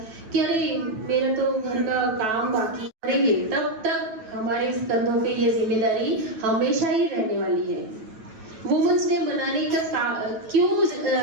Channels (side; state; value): left; late; 9.2 ms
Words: कि अरे मेरा तो घर का काम बाकी करेंगे। तब तक हमारे कंधों पे ये जिम्मेदारी हमेशा ही रहने वाली है। वुमेन्स डे मनाने का क्यों